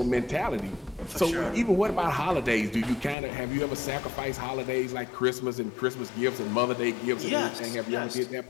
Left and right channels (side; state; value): right; drops out; at 3.2 s